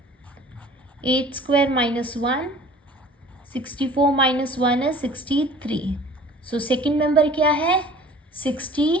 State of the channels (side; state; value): both; normal; correlation 0.47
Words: 8 स्क्वायर माइनस 1, 64 माइनस 1 है 63. सो सेकेंड मेंबर क्या है?